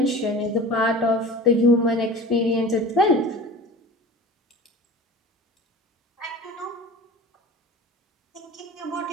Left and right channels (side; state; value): both; normal; correlation 0.37